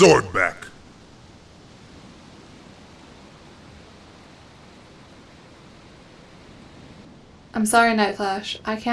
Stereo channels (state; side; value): identical; both; correlation 1.00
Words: back. I'm sorry, Night Flash. I